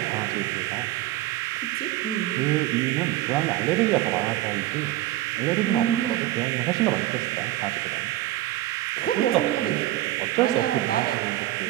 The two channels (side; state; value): left; quieter; 15.6 dB